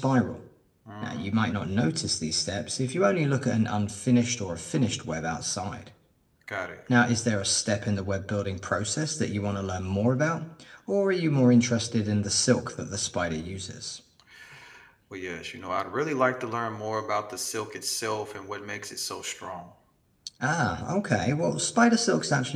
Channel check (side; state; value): both; identical; correlation 1.00